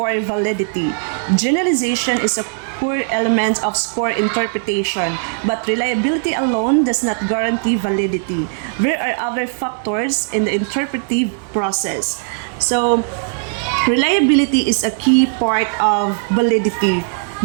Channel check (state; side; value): silent; left; digital silence